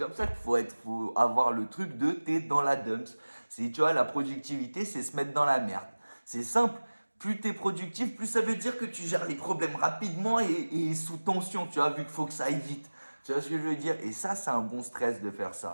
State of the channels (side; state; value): both; inverted; correlation -1.00